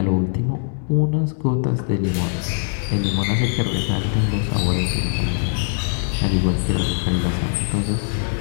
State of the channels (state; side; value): silent; right; 65 dB below the other